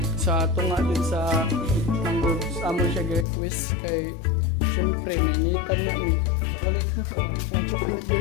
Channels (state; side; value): drops out; right; at 3.2 s